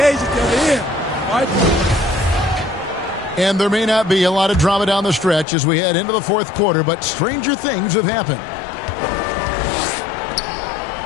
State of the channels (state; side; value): drops out; right; at 5.5 s